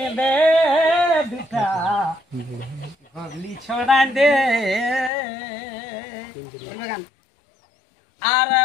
দে দুটা গগলি ছড়াই দে আর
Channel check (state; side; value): drops out; right; at 5.1 s